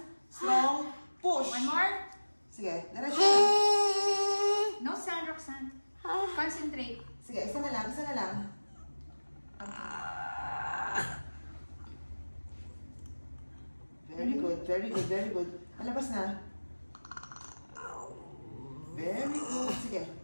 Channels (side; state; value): both; inverted; correlation -1.00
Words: Strong push. One more. Sige. Diretso. No sound, Roxanne. Concentrate. Sige, isa na lang. Very good. Malabas na. Very good. Sige.